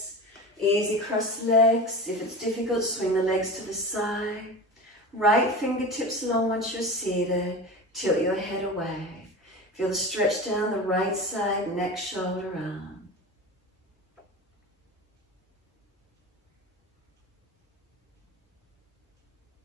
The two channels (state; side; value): normal; both; correlation 0.31